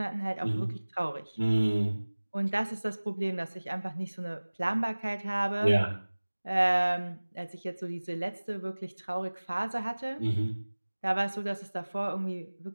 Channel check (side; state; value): both; inverted; correlation -1.00